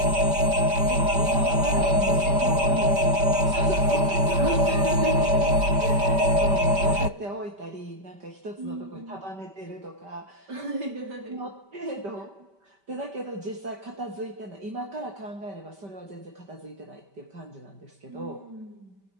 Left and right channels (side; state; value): left; late; 5.1 ms